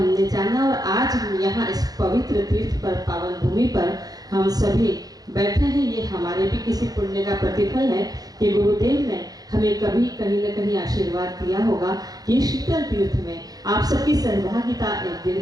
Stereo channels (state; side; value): late; left; 0.18 ms